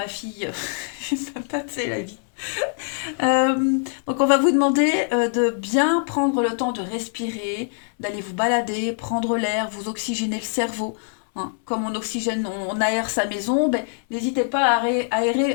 fille. Les patates, c'est la vie. Donc on va vous demander de bien prendre le temps de respirer, d'aller vous balader, prendre l'air, vous oxygéner le cerveau, hein. Comme on oxygène, on aère sa maison, ben, n'hésitez pas à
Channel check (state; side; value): silent; right; 63 dB below the other